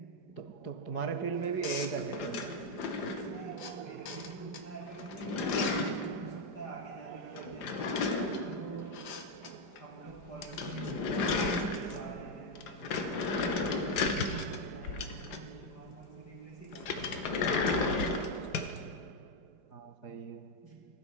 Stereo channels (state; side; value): late; right; 4.9 ms